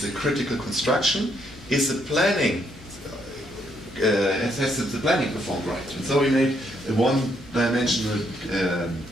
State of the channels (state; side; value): normal; both; correlation 0.73